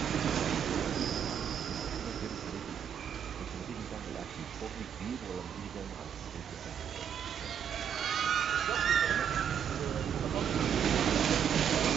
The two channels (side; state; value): left; quieter; 8.3 dB